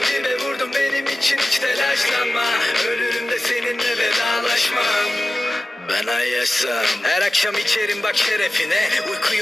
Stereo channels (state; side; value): normal; both; correlation 0.95